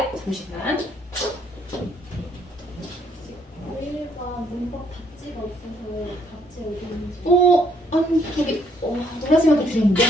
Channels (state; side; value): normal; both; correlation 0.67